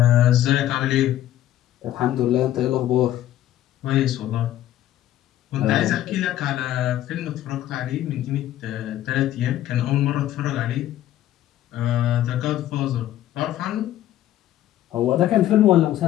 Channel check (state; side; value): quieter; right; 12.9 dB